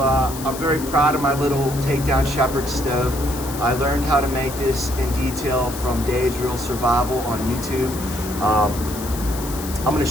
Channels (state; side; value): noise; left; hiss, 11 dB below the sound